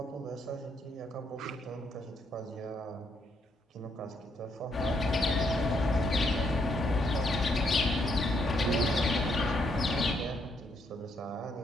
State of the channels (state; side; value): normal; both; correlation 0.74